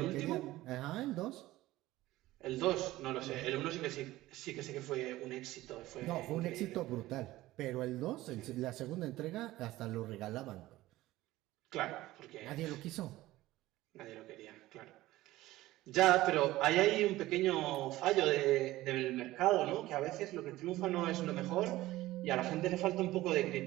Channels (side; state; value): left; quieter; 16.9 dB